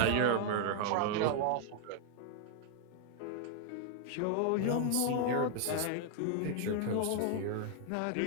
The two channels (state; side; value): different; both; correlation 0.00